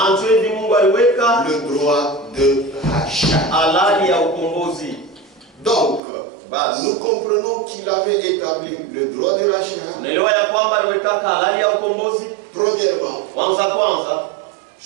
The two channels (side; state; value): left; drops out; at 6.0 s